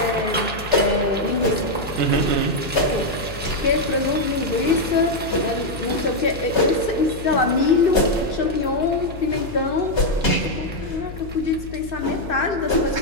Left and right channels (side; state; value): left; noise; hum, 12 dB below the sound